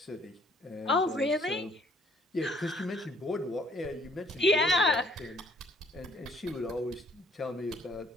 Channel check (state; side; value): normal; both; correlation 0.61